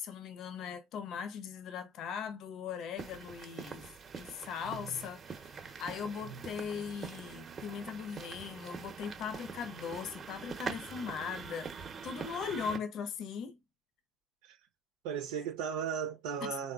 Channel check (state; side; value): normal; both; correlation 0.48